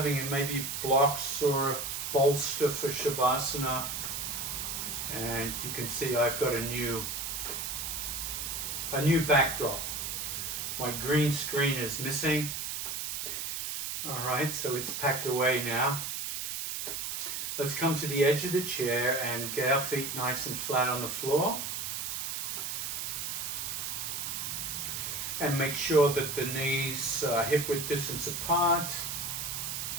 maybe blocks or a bolster for Shavasana, and you can see I've got a new backdrop. My green screen is missing. All right, so it's packed away now. Let's come to the edge of the chair and get our feet nice and flat on the floor. And make sure that the knees are hip width distance apart.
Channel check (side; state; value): right; noise; hiss, 3 dB below the sound